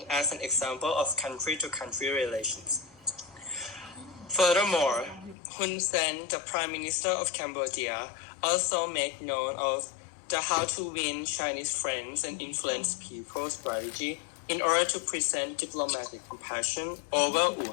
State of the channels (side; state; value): right; drops out; at 5.4 s